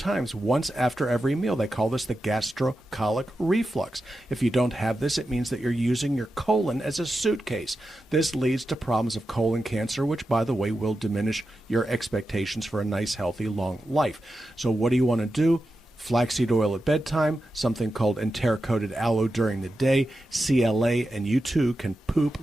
once after every meal. They call this the gastrocolic reflux. If you don't have this, it means that you're using your colon as a suitcase. This leads to problems of colon cancer, which, by the way, will diminish your expectations for a nice, healthy, long life. So what do you want to do? Flaxseed oil at bedtime, something called enteric-coated aloe during the day, CLA, and you too can poop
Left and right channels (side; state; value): both; normal; correlation 0.90